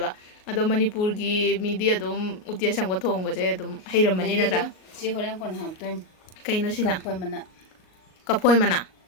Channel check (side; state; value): right; late; 38 ms